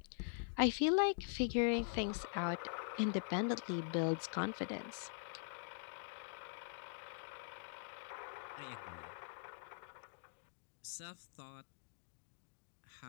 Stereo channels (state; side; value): silent; right; digital silence